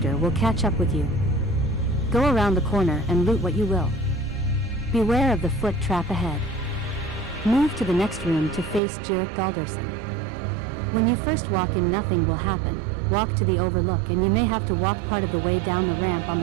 will catch up with you. Go around the corner and loot what you will. Beware of the foot trap ahead. Move to the next room to face Jirik Galderson. When you first walk in, nothing will happen. Walk to the overlook and you may have to walk part of the way down the ramp on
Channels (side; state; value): left; drops out; at 8.8 s